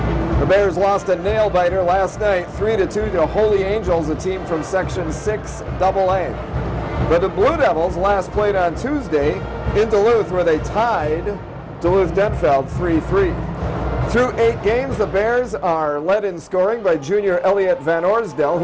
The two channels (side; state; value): both; identical; correlation 1.00